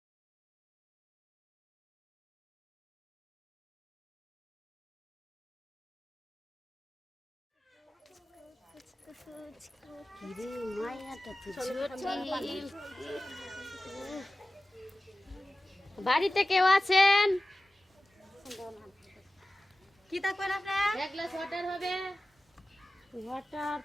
বাড়িতে কেউ আছেন? কি থাকবেন আপনার? এক গ্লাস ওয়াটার হবে? ওয়াটার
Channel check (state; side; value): normal; both; correlation 0.97